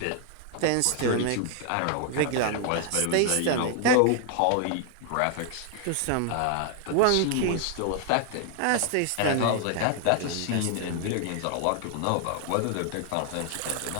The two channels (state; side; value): different; both; correlation 0.00